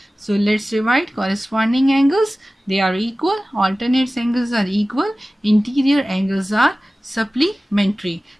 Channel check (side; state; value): both; normal; correlation 0.97